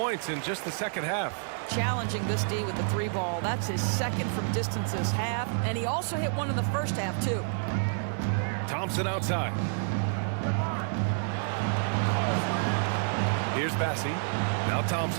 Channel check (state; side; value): silent; left; digital silence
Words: in just the second half. Challenging this D with the 3 ball. That's his second from distance this half. And he also hit one in the first half, too. Thompson outside. Here's Bassey. Now